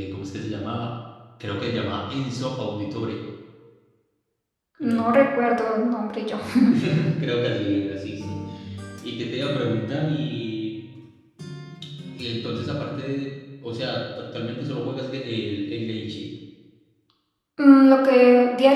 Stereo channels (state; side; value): identical; both; correlation 1.00